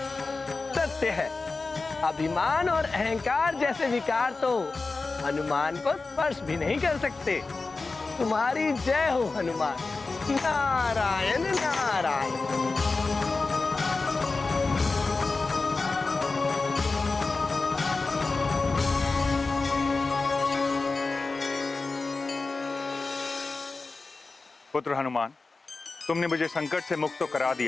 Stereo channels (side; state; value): right; quieter; 3.8 dB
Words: सत्य है, अभिमान और अहंकार जैसे विकार तो हनुमान को स्पर्श भी नहीं कर सकते। तुम्हारी जय हो हनुमान। नारायण नारायण। पुत्र हनुमान, तुमने मुझे संकट से मुक्त तो करा